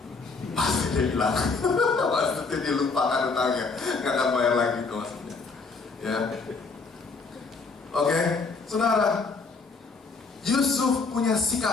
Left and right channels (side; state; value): right; quieter; 4.3 dB